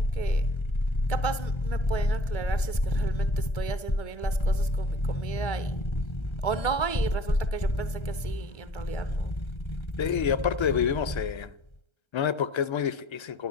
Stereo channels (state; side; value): late; right; 1.3 ms